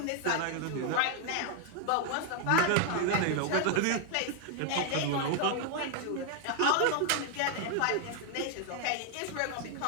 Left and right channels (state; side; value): different; both; correlation 0.00